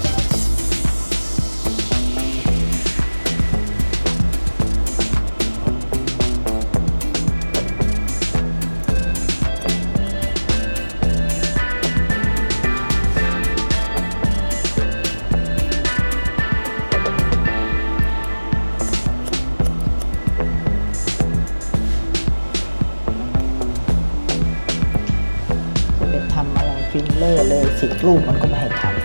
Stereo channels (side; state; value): both; inverted; correlation -1.00